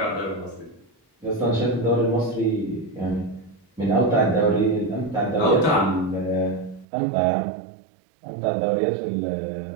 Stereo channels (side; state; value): left; drops out; at 6.9 s